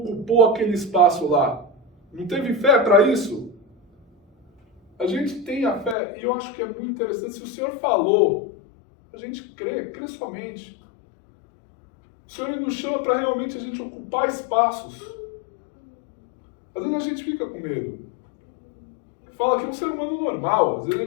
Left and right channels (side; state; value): right; drops out; at 6.0 s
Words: aquele espaço lá? Não teve fé para isso? A gente tem a fé, e eu acho que é muito interessante, se o Senhor falou, a gente crê somente. O Senhor ele nos chama para realmente a gente ocupar espaços. Às vezes a gente fica com medo. Fala que é um ser humano normal. Às vezes a